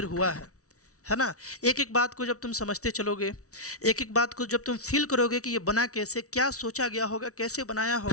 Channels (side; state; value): right; late; 0.65 ms